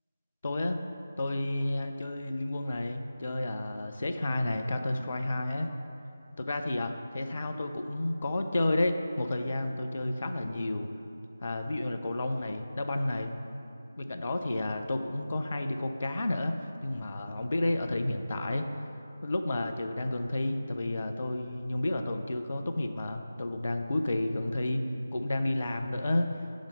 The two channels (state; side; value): inverted; both; correlation -0.95